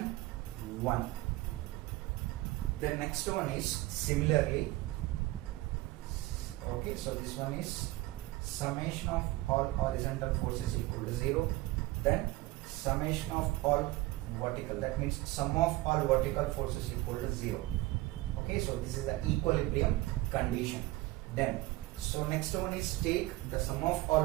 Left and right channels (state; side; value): quieter; left; 19.3 dB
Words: 1. The next one is similarly. Okay, so this one is summation of all horizontal forces equal to 0. Then summation of all vertical, that means sum of all vertical forces equal to 0. Okay, so this is the equilibrium condition. Then so next one is take the sum of all